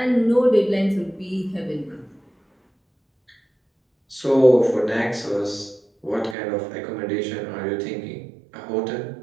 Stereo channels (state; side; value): drops out; left; at 6.4 s